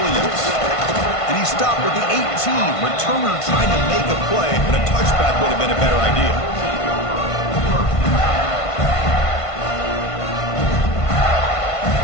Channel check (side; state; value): right; late; 1.5 ms